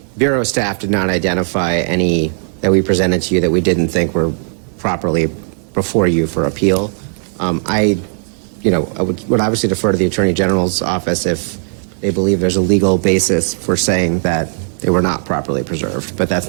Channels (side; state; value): left; silent; 59 dB below the other